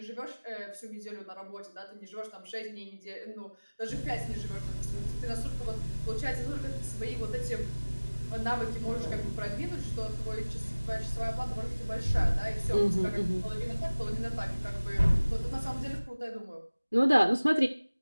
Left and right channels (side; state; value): both; inverted; correlation -1.00